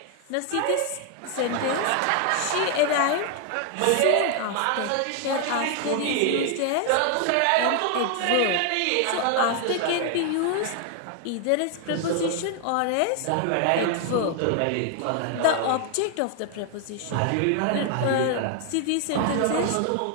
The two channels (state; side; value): different; both; correlation 0.00